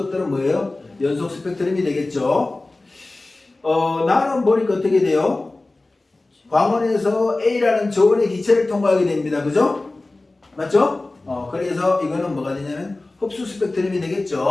뭐예요? 연속 스펙트럼이 되겠죠. 나는 보니까 어떻게 돼요? 광원에서 A라는 저온의 기체를 통과하게 됩니다. 그죠? 맞죠? 그래서 이거는 뭐가 되냐면 흡수 스펙트럼이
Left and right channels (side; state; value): right; quieter; 3.0 dB